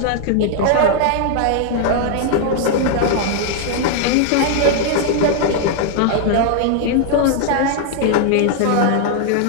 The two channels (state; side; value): different; both; correlation 0.00